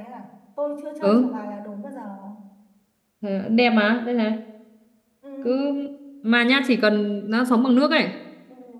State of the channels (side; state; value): both; identical; correlation 1.00